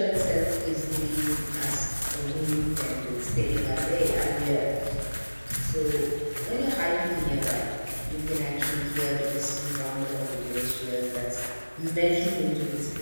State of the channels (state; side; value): inverted; both; correlation -1.00